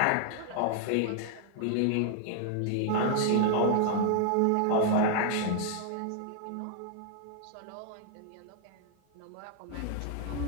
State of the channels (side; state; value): both; different; correlation 0.00